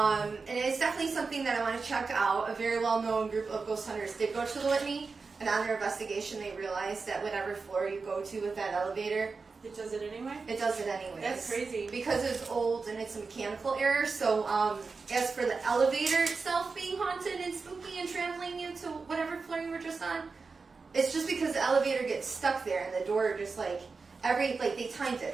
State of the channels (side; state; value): left; quieter; 4.5 dB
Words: it's definitely something that I want to check out. A very well-known group of ghost hunters did go to the Whitney, and on their investigation they realized that whatever floor you go to with that elevator, It does it anyway? it does it anyways. That's crazy. Because it's old and it's a mechanical error. So as for the elevator itself being haunted and spooky and traveling you to whatever floor you were just on, it's just because the elevator gets stuck there and the door just like, they timed it,